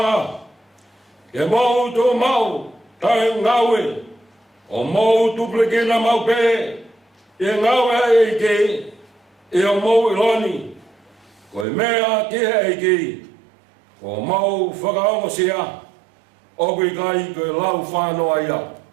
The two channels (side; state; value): left; drops out; at 11.7 s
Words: Ke mau tō mau, tai ngaue. O mau tupleke na mau pe. E ngaue e ke. E o mau iloni, koe mea kia e ki, ko mau whakaonga sia, o kui kai koe lau whanoa ia.